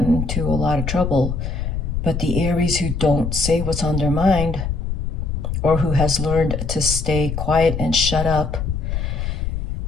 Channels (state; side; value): noise; left; rumble, 2 dB below the sound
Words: into a lot of trouble. But the Aries who don't say what's on their mind, or who has learned to stay quiet and shut up